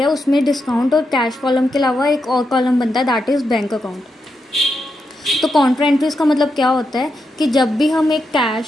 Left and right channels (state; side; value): normal; both; correlation 0.84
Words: उसमें डिस्काउंट और कैश कॉलम के अलावा एक और कॉलम बनता है, दैट इज़ बैंक अकाउंट। तो कॉन्ट्रा एंट्रीज़ का मतलब क्या होता है कि जब भी हम एक